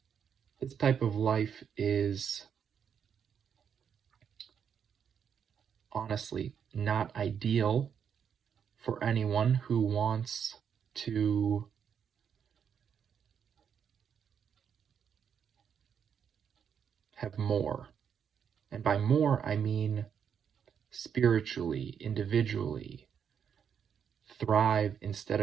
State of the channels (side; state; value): left; quieter; 7.7 dB